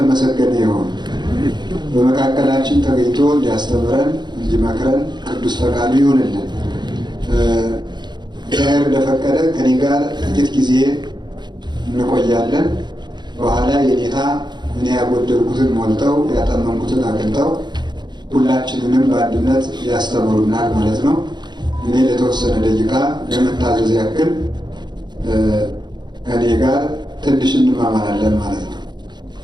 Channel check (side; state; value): left; late; 0.21 ms